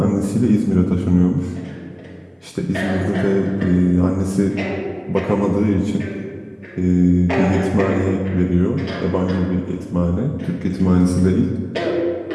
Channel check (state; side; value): identical; both; correlation 1.00